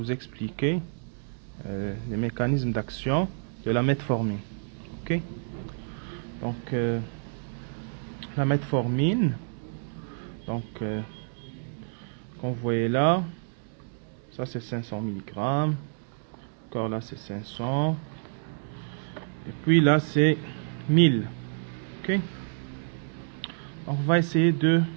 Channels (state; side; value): silent; left; digital silence